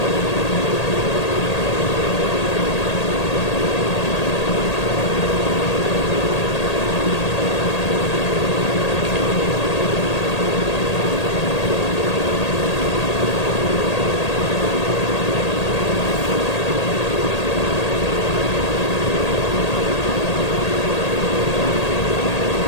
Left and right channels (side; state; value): right; late; 1.8 ms